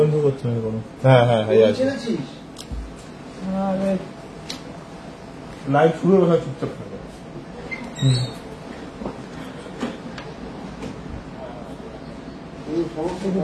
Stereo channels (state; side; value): identical; both; correlation 1.00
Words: তো করছে না কোনো। হ্যাঁ হ্যাঁ হ্যাঁ আছে। লাইভ শুরু হবে, চুপচাপ থাকবে।